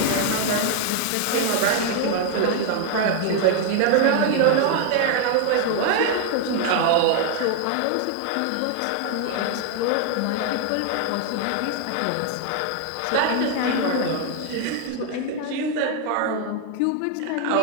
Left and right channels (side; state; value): both; different; correlation 0.00